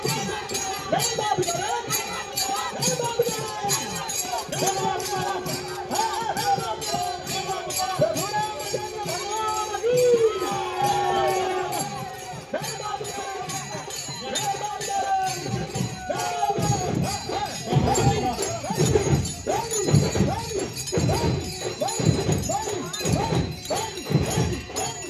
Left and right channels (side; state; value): both; identical; correlation 1.00